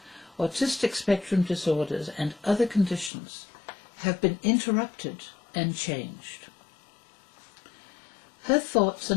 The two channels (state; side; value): drops out; right; at 3.1 s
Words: autistic spectrum disorders, and other conditions have been interrupted and changed. Her thoughts